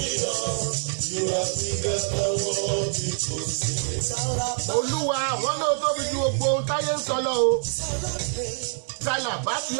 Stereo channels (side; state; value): left; silent; digital silence